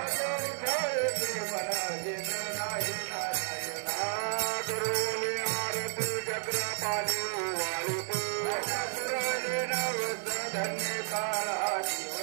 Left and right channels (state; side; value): silent; left; 56 dB below the other